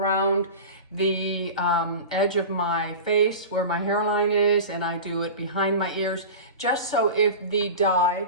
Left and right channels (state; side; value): inverted; both; correlation -0.31